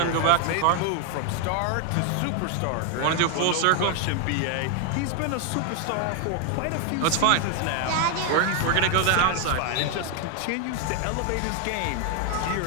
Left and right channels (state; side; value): different; both; correlation 0.01